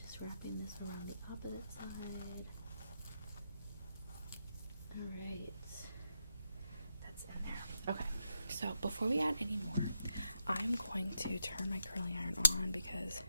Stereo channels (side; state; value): both; inverted; correlation -0.84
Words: wrapping this around the opposite side. Alright, that's in there. Okay, so before we add any more, I'm going to turn my curling iron on because